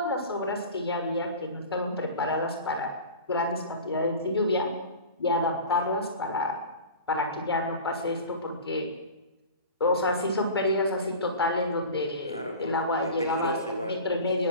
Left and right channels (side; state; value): both; inverted; correlation -0.36